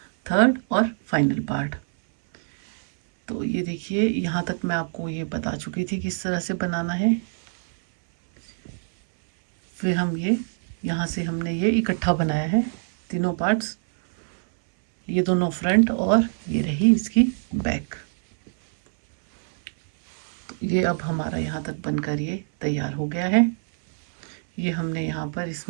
थर्ड और फाइनल पार्ट। तो ये देखिए, यहाँ तक मैं आपको ये बता चुकी थी किस तरह से बनाना है। फिर हम ये यहाँ से हमने ये इकट्ठा बनाया है तीनों पार्ट्स, ये दोनों फ्रंट और ये रही इसकी बैक। तो ये अब हमारा यहाँ तक बनकर ये तैयार हो गया है। ये हमने यहाँ पर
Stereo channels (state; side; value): silent; left; 62 dB below the other